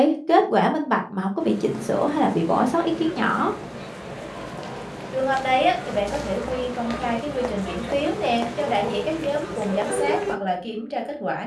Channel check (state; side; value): identical; both; correlation 1.00